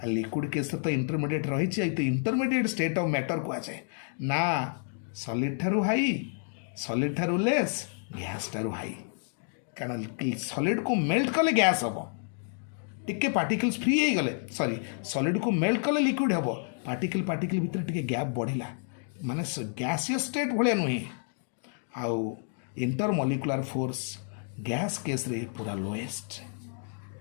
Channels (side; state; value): right; silent; 56 dB below the other